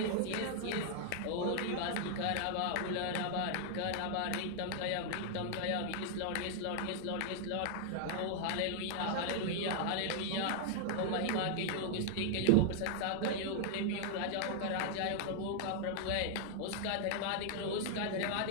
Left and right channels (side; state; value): both; different; correlation 0.00